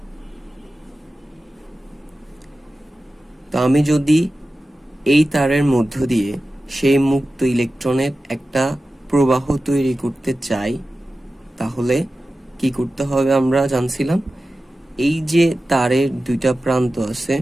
তো আমি যদি এই তারের মধ্য দিয়ে সেই মুক্ত ইলেকট্রনের একটা প্রবাহ তৈরি করতে চাই, তাহলে কি করতে হবে আমরা জানছিলাম। এই যে তারের দুইটা প্রান্ত আছে,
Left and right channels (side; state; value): both; normal; correlation 0.94